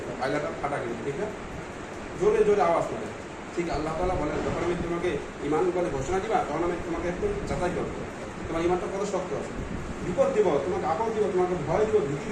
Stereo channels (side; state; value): both; identical; correlation 1.00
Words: পায়লাটা ফাটা গেলে, ঠিক না? জোরে জোরে আওয়াজ করে। ঠিক আল্লাহ তাআলা বলেন, যখন আমি তোমাকে ঈমান বলে ঘোষণা দিবা, তখন আমি তোমাকে একটু যাচাই করবো তোমার ঈমানটা কত শক্ত আছে। বিপদ দিব, তোমাকে আপদ দিব, তোমাকে ভয় দিব, ভীতি